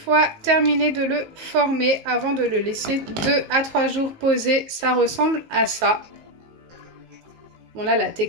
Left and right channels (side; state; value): left; late; 19 ms